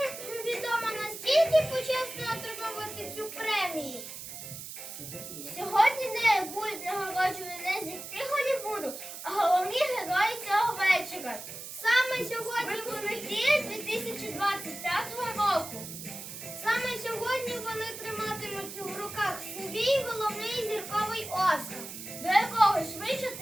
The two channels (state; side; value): noise; right; hiss, 10 dB below the sound